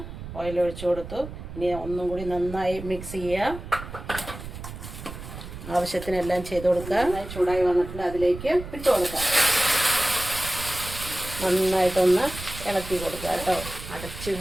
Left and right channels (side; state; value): right; noise; rumble, 11 dB below the sound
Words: ഓയിൽ ഒഴിച്ചു കൊടുത്തു. ഇനി ഒന്നും കൂടി നന്നായി മിക്സ് ചെയ്യുക. ആവശ്യത്തിനെല്ലാം ചെയ്ത് കൊടുക്കുക. നന്നായി ചൂടായി വന്നിട്ടുണ്ട്. അതിലേക്ക് ഇട്ട് കൊടുക്കാം. നന്നായിട്ടൊന്ന് ഇളക്കി കൊടുക്കുക കേട്ടോ. അടച്ച്